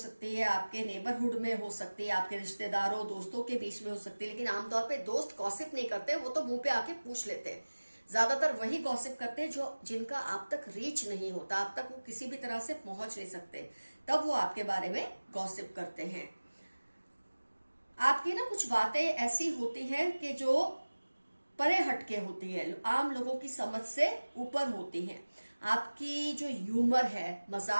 है, आपके नेबरहुड में हो सकती है, आपके रिश्तेदारों दोस्तों के बीच में हो सकती है। लेकिन आमतौर पे दोस्त गॉसिप नहीं करते, वो तो मुंह पे आके पूछ लेते हैं। ज्यादातर वही गॉसिप करते हैं जो जिनका आप तक रीच नहीं होता, आप तक वो किसी भी तरह से पहुंच नहीं सकते, तब वो आपके बारे में गॉसिप करते हैं। आपकी ना कुछ बातें ऐसी होती हैं कि जो परे हटके होती है, आम लोगों की समझ से ऊपर होती हैं। आपकी जो ह्यूमर है,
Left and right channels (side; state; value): both; inverted; correlation -1.00